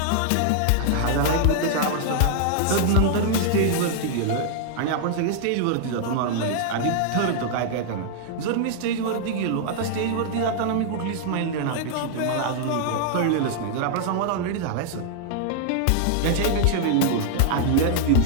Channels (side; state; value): both; different; correlation -0.01